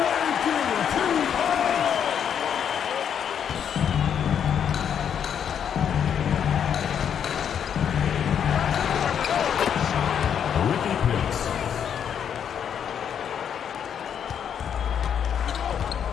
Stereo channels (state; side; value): quieter; right; 8.3 dB